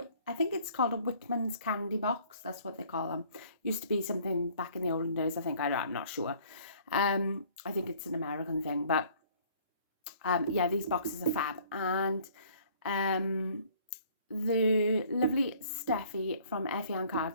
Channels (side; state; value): both; inverted; correlation -0.56